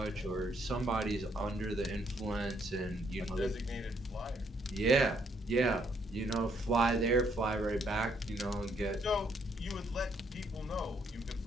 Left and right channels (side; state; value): both; normal; correlation 0.71